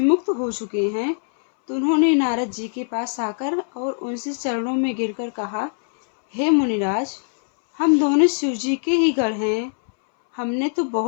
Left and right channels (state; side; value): silent; right; 62 dB below the other